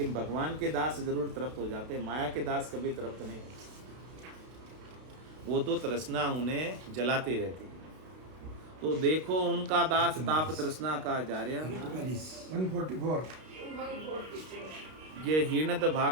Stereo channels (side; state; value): left; late; 32 ms